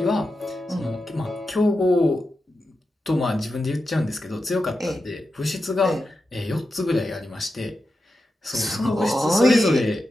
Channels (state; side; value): normal; both; correlation 0.90